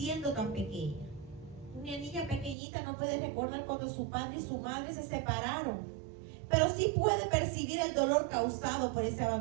tan pequeña. Una niña pequeñita no puede recordar cuando su padre y su madre se separaron, pero sí puede percibir el dolor causado por ese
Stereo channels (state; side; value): drops out; left; at 2.6 s